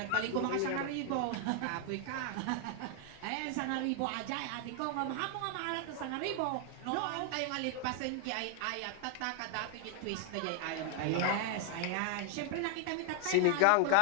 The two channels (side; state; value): both; different; correlation 0.00